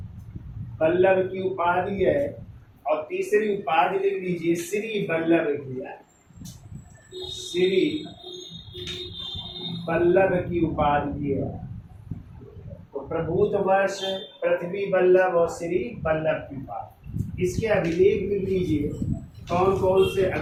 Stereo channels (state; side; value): identical; both; correlation 1.00